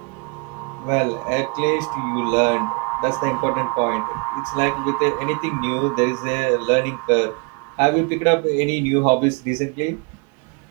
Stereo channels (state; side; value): quieter; left; 31.9 dB